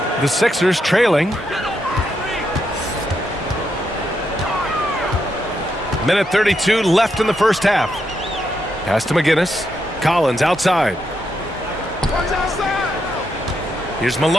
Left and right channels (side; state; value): both; normal; correlation 0.81